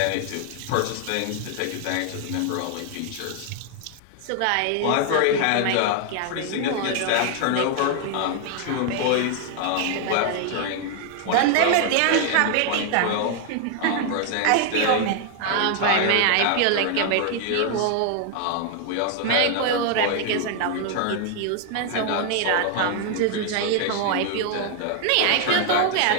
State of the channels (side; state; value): both; different; correlation 0.00